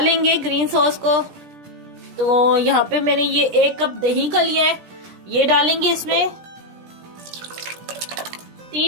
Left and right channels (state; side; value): late; left; 17 ms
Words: ग्रीन सॉस को। तो यहाँ पे मैंने ये 1 कप दही का लिया है, ये डालेंगे इसमें।